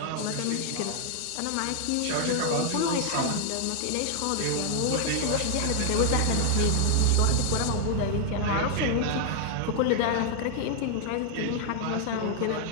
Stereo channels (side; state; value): both; different; correlation 0.00